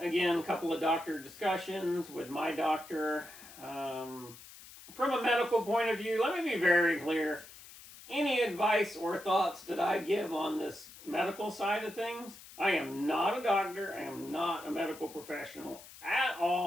a couple of doctor discussions with my doctor. From a medical point of view, let me be very clear. Any advice or thoughts that I give on this medical side of things, I am not a doctor. I am not a medical professional at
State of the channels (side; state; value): left; noise; hiss, 18 dB below the sound